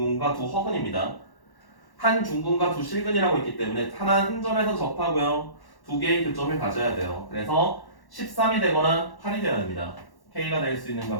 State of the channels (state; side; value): late; right; 1.1 ms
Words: 두 허근입니다. 한 중근과 두 실근이라고 있기 때문에 하나 한 점에서 접하고요. 두 개의 교점을 가져야 돼요. 그래서 13이 되거나 8이 되어야 됩니다. K가 될 수 있는